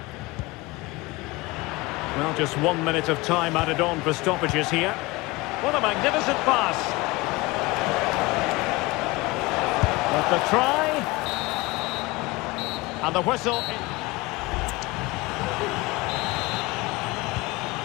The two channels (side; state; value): right; quieter; 22.4 dB